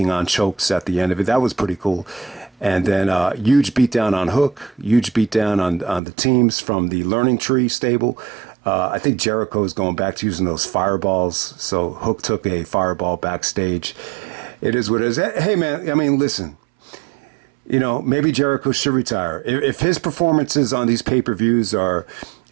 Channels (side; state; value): left; drops out; at 6.0 s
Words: on chokes at the end of it. That was pretty cool. And then huge beatdown on Hook, huge beatdown on the teams from the Learning Tree stable. I think Jericho is going back to using those fireballs. So Hook took a fireball backstage. It is what it is. Hey, man, I mean, listen. Maybe Jericho should retire. If his performances on these pay-per-views are